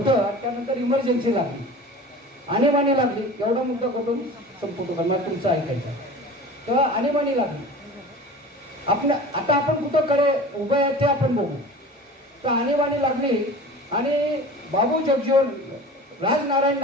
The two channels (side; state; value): both; normal; correlation 0.38